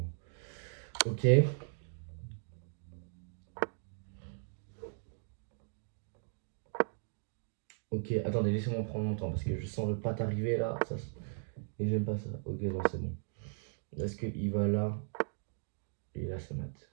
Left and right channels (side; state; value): left; silent; digital silence